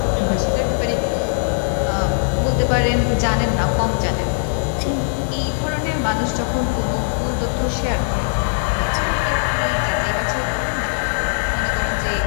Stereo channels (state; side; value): silent; right; digital silence